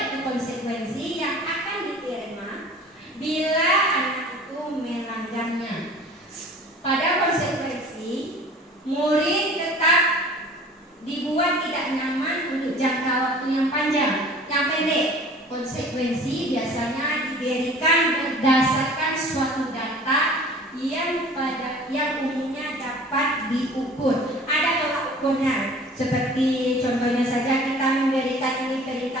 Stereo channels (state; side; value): normal; both; correlation 0.45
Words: konsekuensi yang akan diterima bila anak itu melanggarnya. Pada konsekuensi, murid tetap dibuat tidak nyaman untuk jangka waktu yang panjang, yang pendek. Konsekuensi biasanya diberikan berdasarkan suatu data yang umumnya dapat diukur. Ada tolak ukurnya. Seperti contohnya saja kita memberikan ini